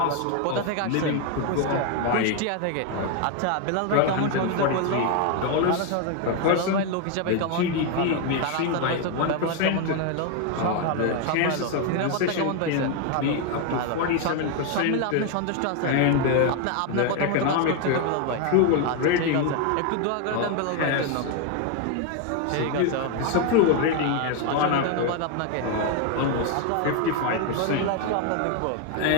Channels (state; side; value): different; both; correlation 0.01